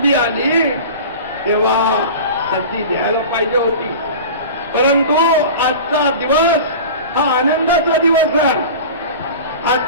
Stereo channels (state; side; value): inverted; both; correlation -0.35